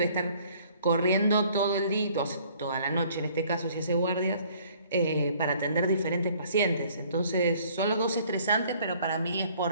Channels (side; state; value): both; inverted; correlation -0.58